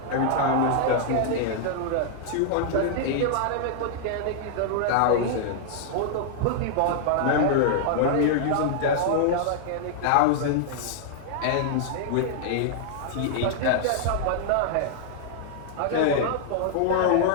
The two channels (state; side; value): different; both; correlation -0.01